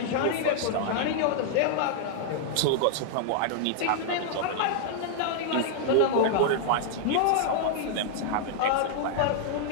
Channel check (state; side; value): different; both; correlation -0.01